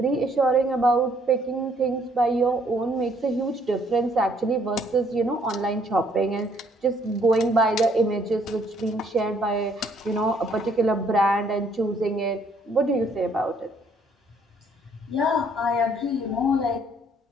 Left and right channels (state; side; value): normal; both; correlation 0.65